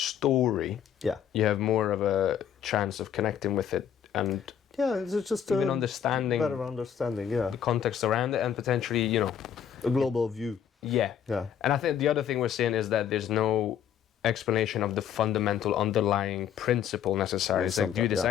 you have more of a chance of connecting with it and it's just even understanding better understanding, the context around it and potentially, a global view. Yeah. And I think the other thing we're seeing is that there's no explanation of the fundamental underlying principle necessary. It's like do this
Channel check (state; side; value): quieter; right; 8.8 dB